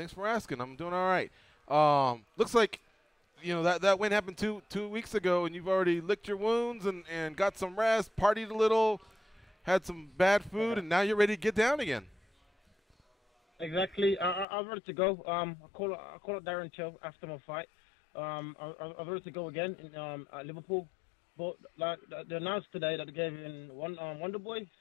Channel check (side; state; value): right; drops out; at 14.5 s